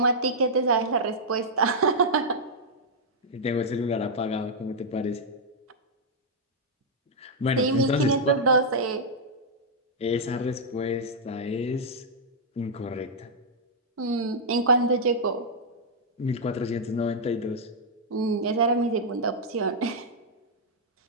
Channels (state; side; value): normal; both; correlation -0.06